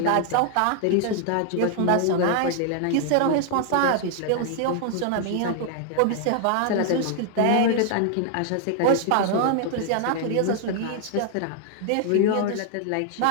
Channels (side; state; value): both; different; correlation 0.00